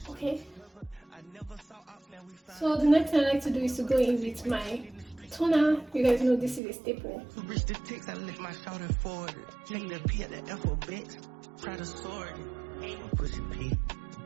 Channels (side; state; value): left; drops out; at 6.6 s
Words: Okay. So the next thing I like to do is to go in with my toner. You guys know this is a staple. Reach the ticks, I lift my shoulder forward. Take the P at the alphabet. Try to sword. Push a P.